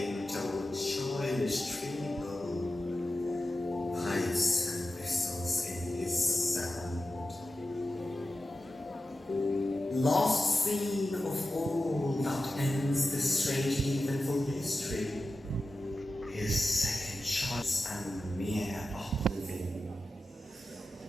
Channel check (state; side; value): normal; both; correlation 0.93